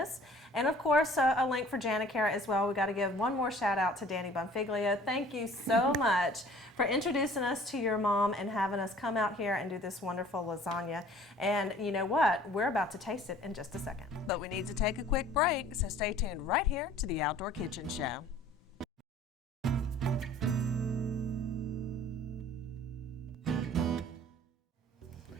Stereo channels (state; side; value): normal; both; correlation 0.51